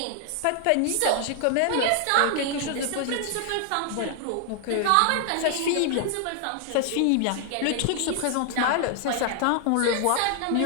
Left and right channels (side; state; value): both; different; correlation 0.00